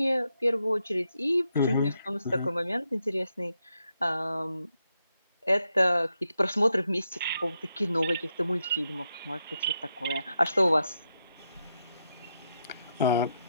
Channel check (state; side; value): inverted; both; correlation -0.83